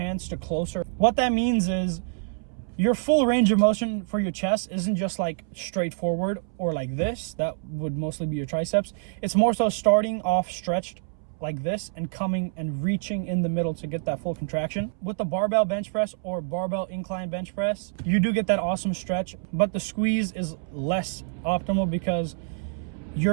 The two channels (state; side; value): silent; left; 61 dB below the other